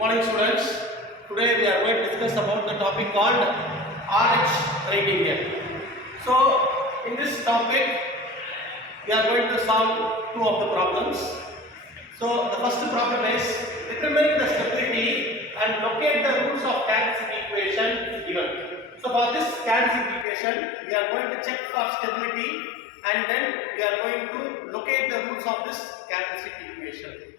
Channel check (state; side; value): drops out; right; at 20.2 s